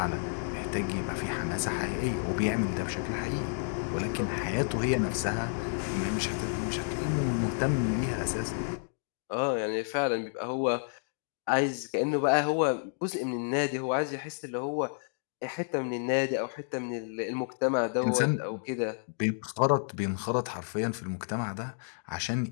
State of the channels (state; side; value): silent; right; digital silence